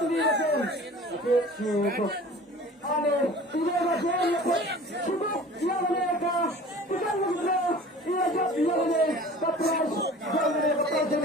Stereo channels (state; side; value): normal; both; correlation 0.43